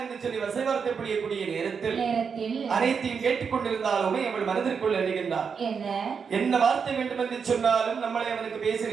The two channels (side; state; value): left; quieter; 6.1 dB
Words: என்று சொல்லி வசைவார்த்தை புரியக்கூடிய நேரத்தில் அனைத்தையும் கேட்டுக்கொண்டிருந்தாலுமே அவள் மனதிற்குள் எழுகின்றார். என்ன வார்த்தை வேண்டும் என்று சொன்னாலும் நம்மளை அவனுக்கு